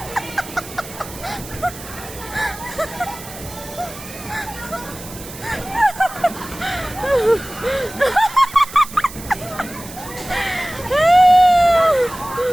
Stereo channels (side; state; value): right; noise; hiss, 15 dB below the sound